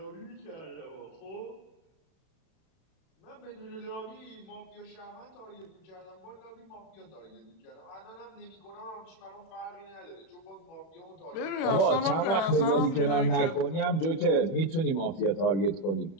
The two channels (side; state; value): right; late; 31 ms